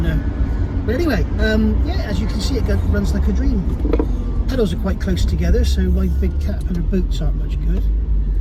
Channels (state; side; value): identical; both; correlation 1.00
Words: know. But anyway, yeah, as you can see, it runs like a dream. Pedals are quite close together, so my big Caterpillar boots aren't much good.